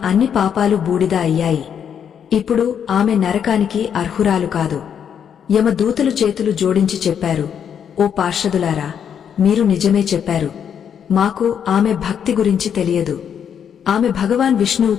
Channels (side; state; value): right; quieter; 8.2 dB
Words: అన్ని పాపాలు బూడిద అయ్యాయి. ఇప్పుడు ఆమె నరకానికి అర్హురాలు కాదు. యమదూతలు చేతులు జోడించి చెప్పారు, ఓ పార్షదులారా, మీరు నిజమే చెప్పారు. మాకు ఆమె భక్తి గురించి తెలియదు. ఆమె భగవాన్